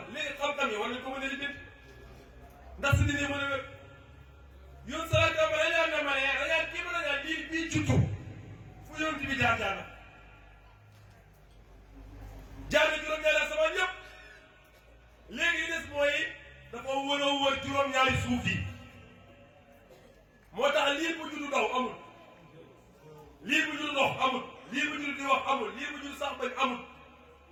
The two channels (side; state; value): both; identical; correlation 1.00